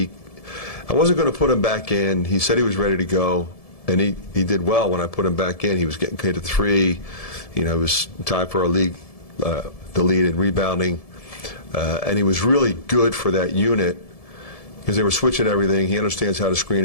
wasn't going to put him back in. He said he was ready to go, and he did well when I put him back in. He was getting paid at 3. You know, it was tied for our league, the lead in rebounding, and he was really good for that unit because they were switching everything. He understands how to screen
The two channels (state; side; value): late; right; 1.7 ms